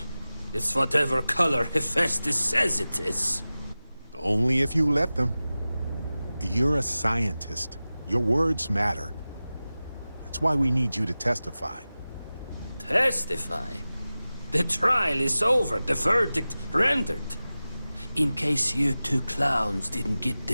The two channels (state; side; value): inverted; both; correlation -0.96